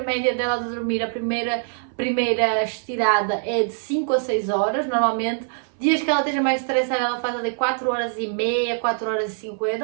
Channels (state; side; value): silent; left; 61 dB below the other